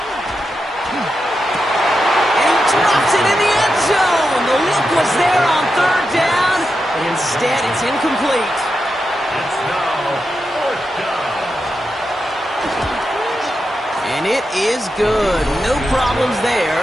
And he drops it in the end zone. The look was there on 3rd down, but instead it's incomplete. It's now 4th down. And it is good. No problems there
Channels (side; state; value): both; normal; correlation 0.88